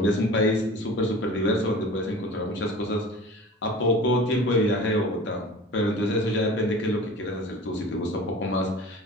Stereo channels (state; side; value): normal; both; correlation 0.39